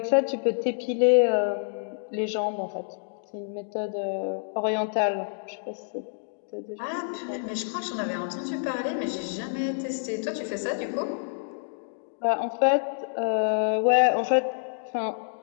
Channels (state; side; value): silent; right; digital silence